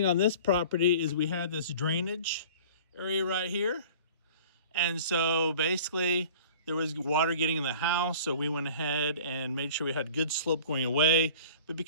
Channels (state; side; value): inverted; both; correlation -0.45